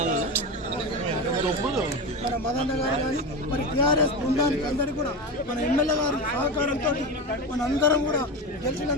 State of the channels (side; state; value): both; normal; correlation 0.21